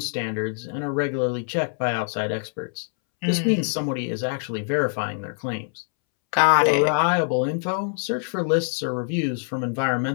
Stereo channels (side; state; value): right; silent; 62 dB below the other